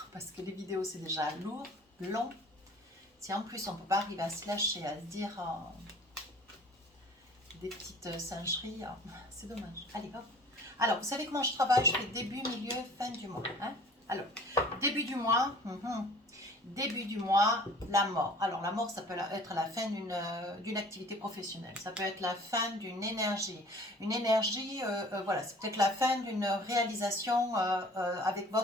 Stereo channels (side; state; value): both; normal; correlation 0.48